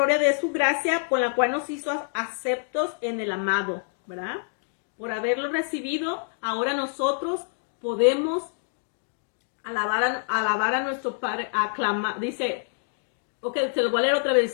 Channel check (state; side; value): silent; right; digital silence